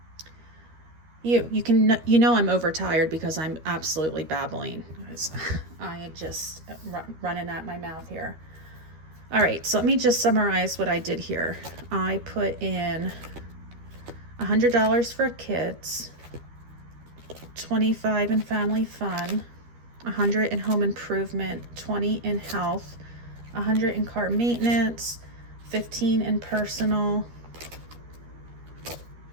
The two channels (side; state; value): left; late; 13 ms